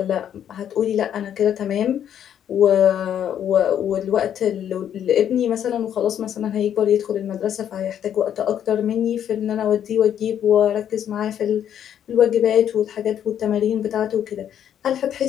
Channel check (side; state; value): right; quieter; 9.7 dB